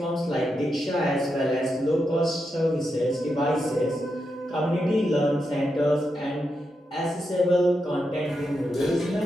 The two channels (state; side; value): normal; both; correlation 0.85